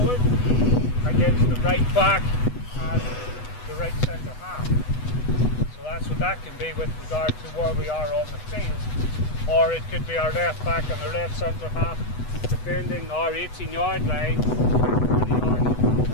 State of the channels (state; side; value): late; right; 8.1 ms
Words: against the right back and the right centre half. So that's what that can be with regard to where we are on the field. Or it could be our left back and our left centre half defending our 18-yard line, 20 yards,